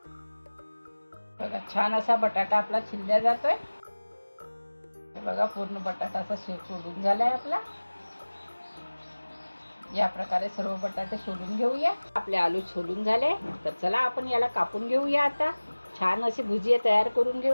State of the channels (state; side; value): inverted; both; correlation -1.00